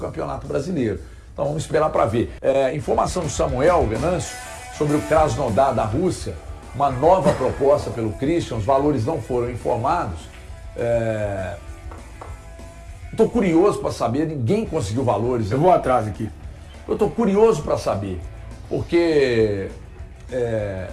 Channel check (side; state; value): both; identical; correlation 1.00